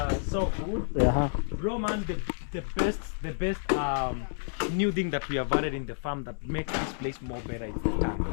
so good. Bro, man, the best new thing that we have added in the farm that makes this place more better is the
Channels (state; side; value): silent; right; 58 dB below the other